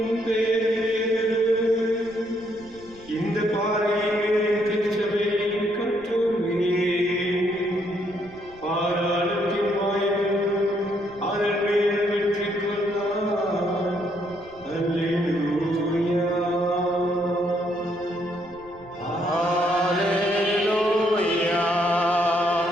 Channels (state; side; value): noise; right; rumble, 24 dB below the sound